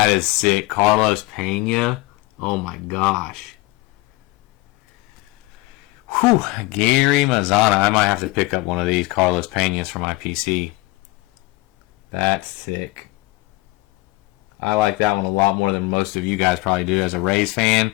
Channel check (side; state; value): right; quieter; 21.4 dB